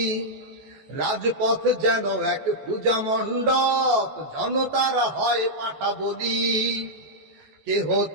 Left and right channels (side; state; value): left; late; 14 ms